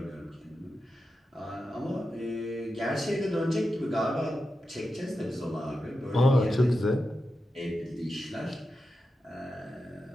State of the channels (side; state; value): both; normal; correlation 0.90